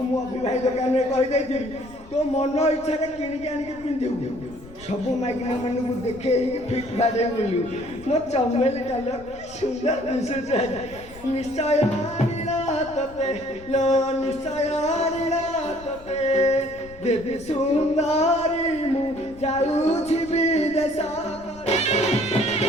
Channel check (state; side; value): noise; left; rumble, 20 dB below the sound